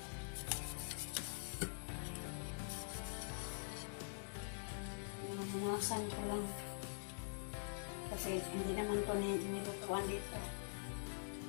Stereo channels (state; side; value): silent; right; digital silence